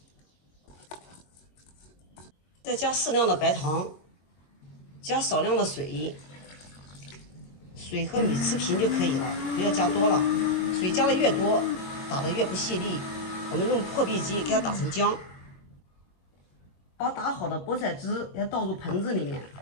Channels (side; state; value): right; late; 22 ms